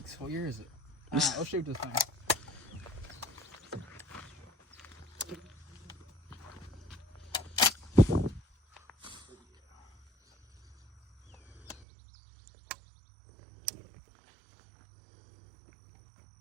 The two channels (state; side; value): drops out; left; at 11.9 s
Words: What year is it? All right, let's shoot this thing.